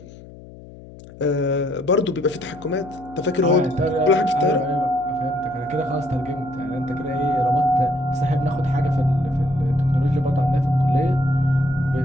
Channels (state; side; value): noise; left; hum, 18 dB below the sound